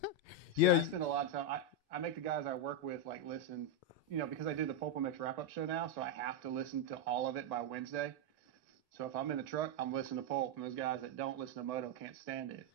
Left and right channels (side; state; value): both; normal; correlation 0.02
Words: I spend a lot of time. I make the guys I work with like listen, because I do the PulpMX Wrap Show now, so I have to listen to all of it by Wednesday. So if I'm in the truck, I'm listening to Pulp, and those guys that don't listen to Moto can't stand it.